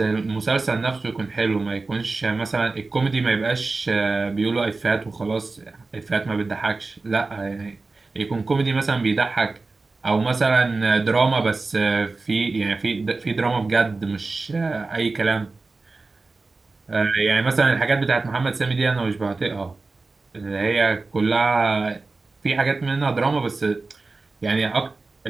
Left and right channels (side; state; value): left; quieter; 3.7 dB